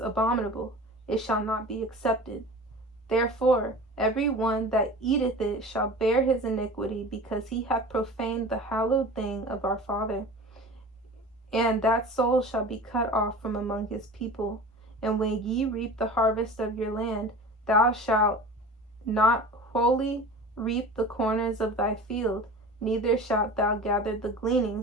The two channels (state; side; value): normal; both; correlation 0.37